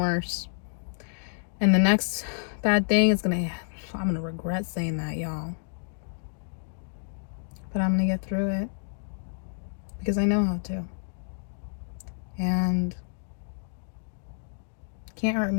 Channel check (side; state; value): right; silent; digital silence